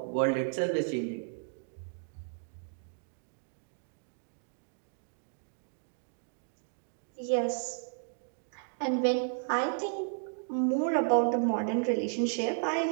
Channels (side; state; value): left; silent; digital silence